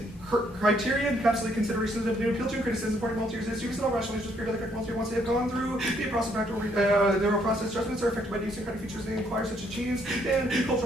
Criteria encapsulate considerations of new appeal to and criticism supporting multi-area students and all rational issues period of the correct multi once they have gone through the process of practical their own process judgments are affected by these kind of features they inquire such as genes and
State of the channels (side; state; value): both; normal; correlation 0.69